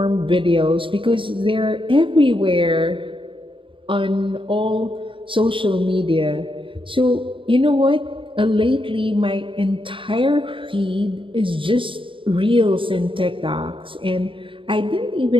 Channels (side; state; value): left; late; 0.25 ms